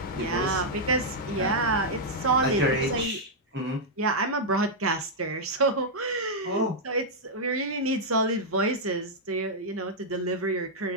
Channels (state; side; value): normal; both; correlation -0.05